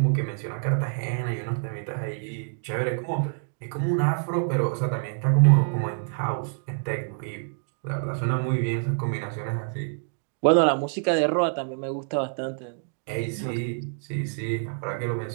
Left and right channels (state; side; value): silent; left; digital silence